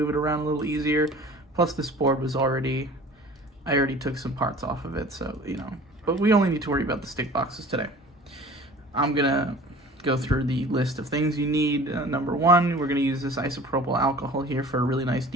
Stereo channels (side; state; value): both; normal; correlation 0.44